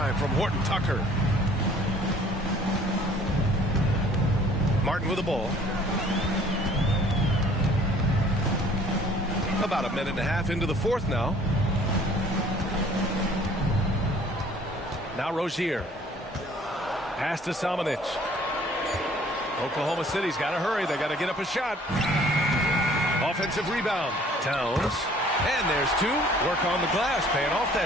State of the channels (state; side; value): normal; both; correlation 0.55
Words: from Horton Tucker. Martin with the ball. About a minute and a half into the fourth now. Now Rozier. Pass to Samanic. Oklahoma City's got to hurry. They got to get up a shot. Offensive rebound. Towns. And there's 2. Work on the glass, paying off